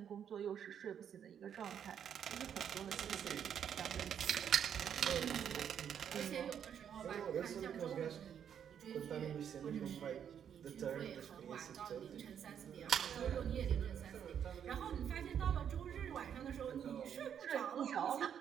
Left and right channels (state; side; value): quieter; left; 8.6 dB